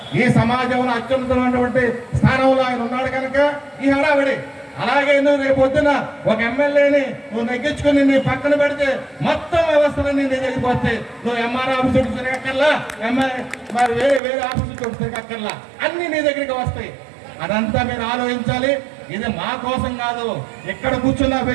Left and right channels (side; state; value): left; drops out; at 14.2 s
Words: ఈ సమాజంలో అత్యున్నతమైనటువంటి స్థానంలో ఆయన ఉన్నాడు కనుక ఈ హడావిడి. అలాగే నువ్వు రేపు పొద్దున ఒక ఎమ్మెల్యేని నువ్వు నెగ్గించుకుని నీ పక్కన పెడితే మొత్తం వ్యవస్థలన్నీ నీ దగ్గరికి వస్తాయి. నువ్వు ఎంఆర్ ఆఫీస్ చుట్టూ తిరగక్కర్లా, మరి వేరే ఆఫీసు చుట్టూ తిరగక్కర్లా, అన్ని నీ దగ్గరికి వస్తాయి. అదంతా మీరు ఆలోచించాలి. ఇది మా కోసం కాదు, ఇక్కడ కూర్చున్న